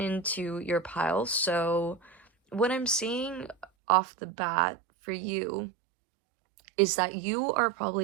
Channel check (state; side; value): drops out; left; at 3.7 s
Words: your pile. So what I'm seeing off the bat for you is that you are